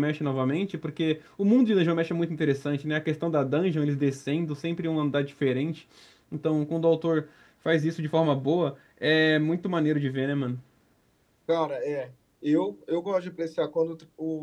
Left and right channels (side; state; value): both; identical; correlation 1.00